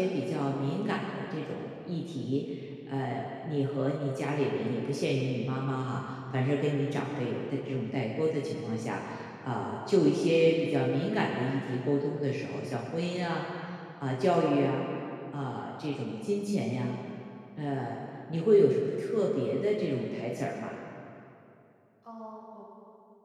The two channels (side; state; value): both; identical; correlation 1.00